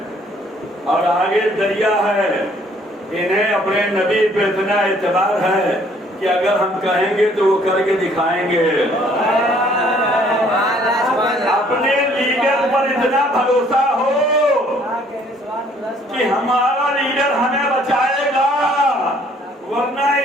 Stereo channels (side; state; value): both; normal; correlation 0.61